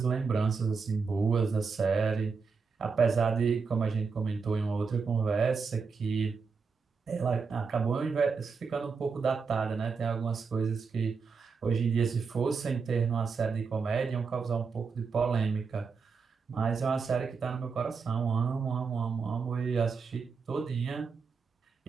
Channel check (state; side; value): quieter; left; 5.2 dB